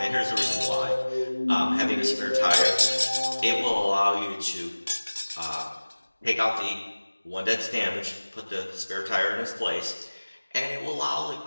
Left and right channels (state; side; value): inverted; both; correlation -1.00